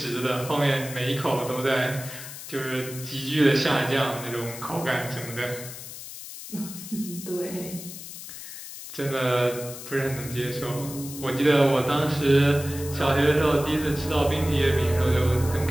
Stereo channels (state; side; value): noise; left; hiss, 12 dB below the sound